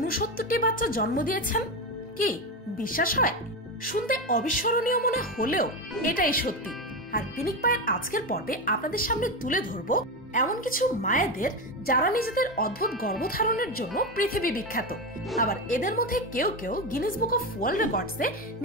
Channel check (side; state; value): both; normal; correlation 0.15